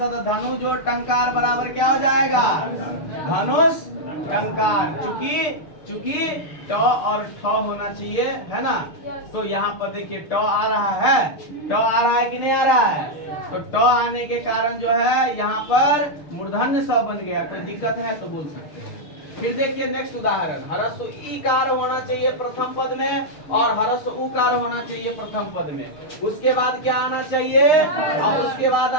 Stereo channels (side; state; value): right; late; 6.6 ms